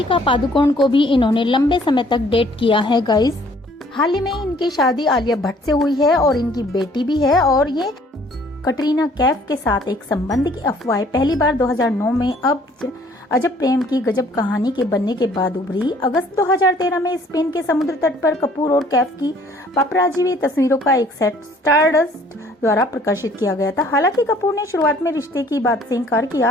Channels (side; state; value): both; normal; correlation 0.58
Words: पादुकोण को भी इन्होंने लंबे समय तक डेट किया है गाइस। हाल ही में इनकी शादी आलिया भट्ट से हुई है और इनकी बेटी भी है और ये कटरीना कैफ के साथ एक संबंध की अफवाह पहली बार 2009 में अब अजब प्रेम की गजब कहानी के बनने के बाद उभरी। अगस्त 2013 में स्पेन के समुद्र तट पर कपूर और कैफ की पापराजी हुई तस्वीरों का एक सेट स्टारडस्ट द्वारा प्रकाशित किया गया था। हालांकि कपूर ने शुरुआत में रिश्ते की बात से इनकार